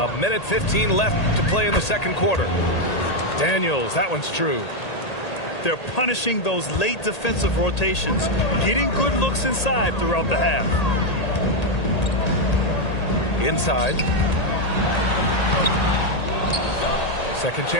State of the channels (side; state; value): right; late; 1.8 ms